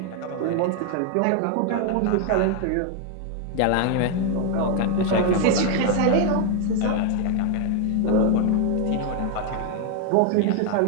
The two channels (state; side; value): different; both; correlation 0.00